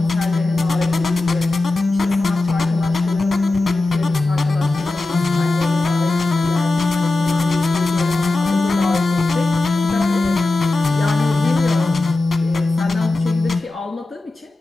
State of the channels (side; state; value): right; quieter; 3.1 dB